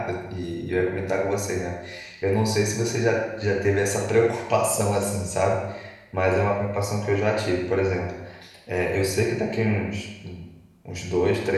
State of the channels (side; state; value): both; identical; correlation 1.00